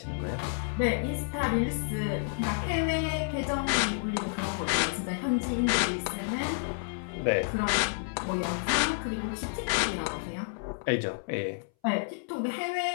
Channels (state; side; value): silent; right; 58 dB below the other